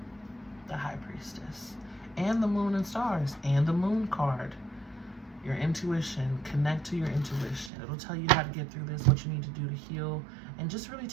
the High Priestess. And the Moon and Stars. And the Moon card. Your intuition. Connect to your intuition. It'll tell you how to get through this, what you need to do to heal. And just really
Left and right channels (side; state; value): left; drops out; at 7.7 s